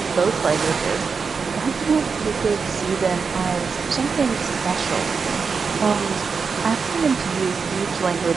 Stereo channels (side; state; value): left; quieter; 5.3 dB